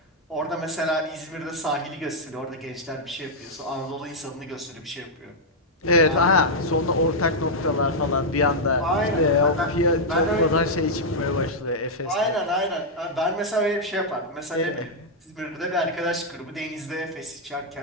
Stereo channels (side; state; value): both; normal; correlation -0.04